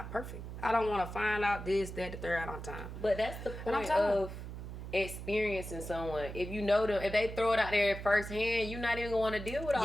perfect. I don't want to find out this, that, the third on time. But that's the point of experiencing someone. If you know them, if they throw it out there firsthand, you're not even going to want to deal with all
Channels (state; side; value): noise; right; hum, 9 dB below the sound